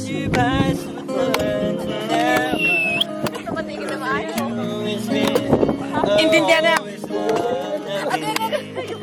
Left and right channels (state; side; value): identical; both; correlation 1.00